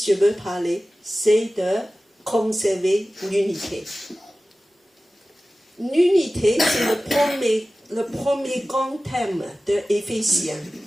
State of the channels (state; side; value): normal; both; correlation 0.96